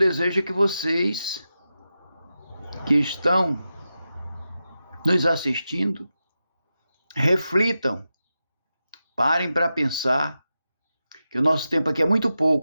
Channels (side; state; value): both; inverted; correlation -0.91